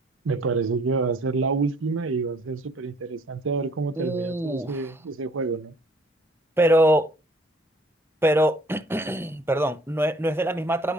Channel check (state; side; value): normal; both; correlation 0.58